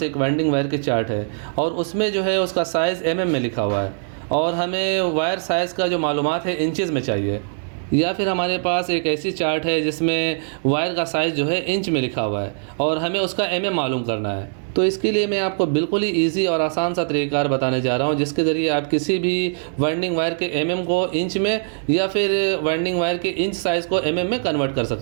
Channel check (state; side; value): silent; left; digital silence